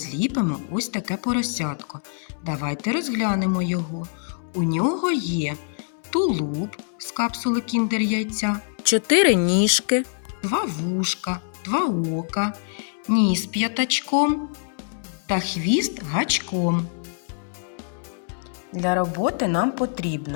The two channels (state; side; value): silent; right; digital silence